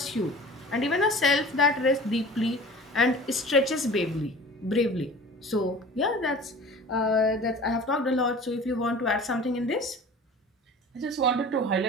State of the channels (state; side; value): normal; both; correlation 0.41